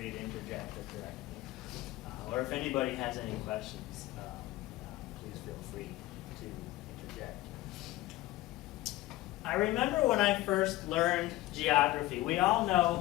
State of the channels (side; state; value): right; quieter; 17.2 dB